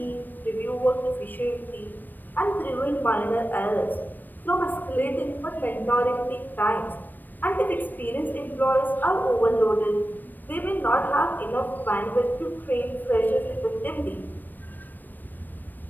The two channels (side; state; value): right; late; 0.090 ms